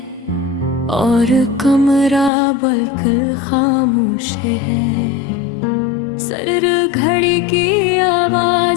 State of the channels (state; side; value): drops out; right; at 2.3 s